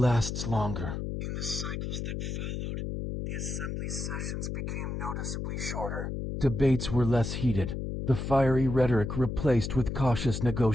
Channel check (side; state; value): left; noise; hum, 4 dB below the sound